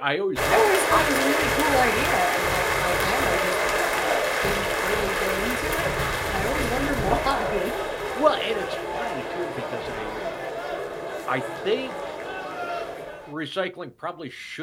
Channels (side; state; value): both; identical; correlation 1.00